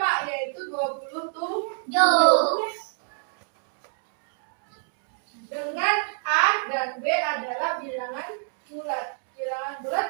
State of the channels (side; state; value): left; silent; digital silence